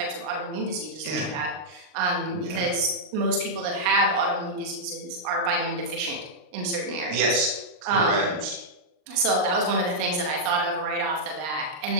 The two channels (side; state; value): left; late; 39 ms